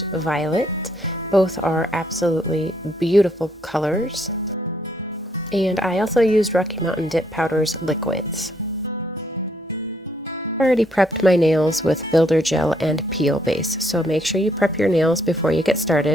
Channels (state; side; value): normal; both; correlation 0.71